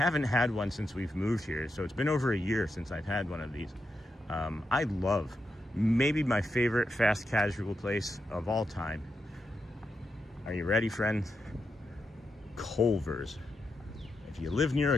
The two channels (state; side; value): normal; both; correlation 0.86